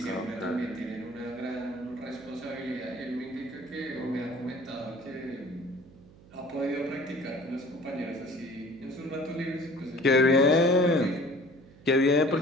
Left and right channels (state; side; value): noise; right; hum, 23 dB below the sound